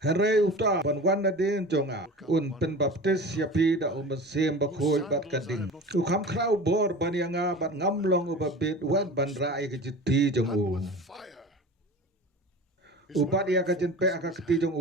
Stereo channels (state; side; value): normal; both; correlation 0.35